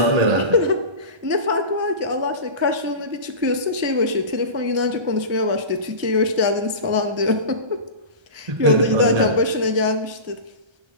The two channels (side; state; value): left; late; 1.3 ms